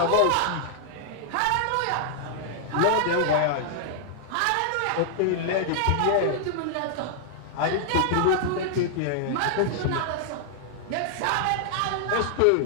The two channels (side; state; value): both; different; correlation -0.01